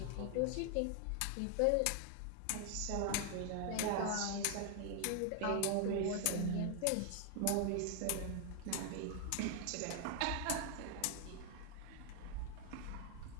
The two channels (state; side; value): different; both; correlation 0.00